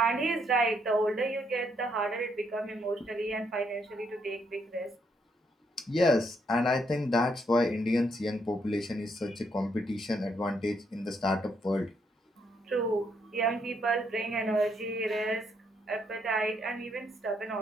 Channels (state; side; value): normal; both; correlation 0.74